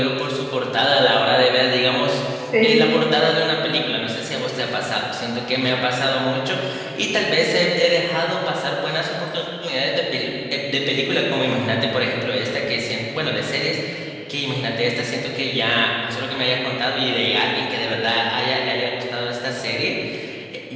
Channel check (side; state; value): both; identical; correlation 1.00